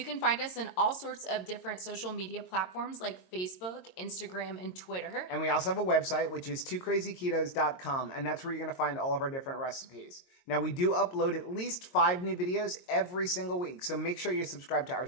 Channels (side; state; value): right; late; 22 ms